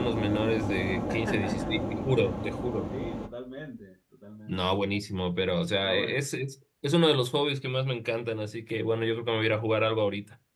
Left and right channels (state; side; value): identical; both; correlation 1.00